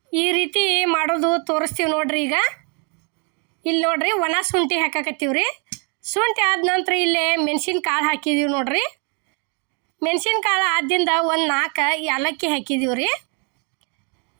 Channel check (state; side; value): quieter; left; 36.1 dB